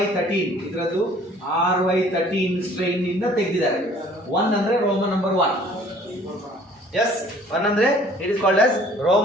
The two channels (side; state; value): both; normal; correlation 0.54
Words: ಇದರದ್ದು RY13 strain ಇಂದ ತೆಗೆದಿದ್ದಾರೆ. 1 ಅಂದ್ರೆ ರೋಮನ್ ನಂಬರ್ 1. Yes, 1 ಅಂದ್ರೆ it is called as